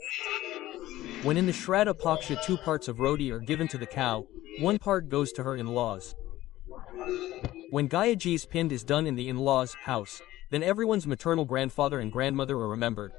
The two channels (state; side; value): quieter; right; 15.6 dB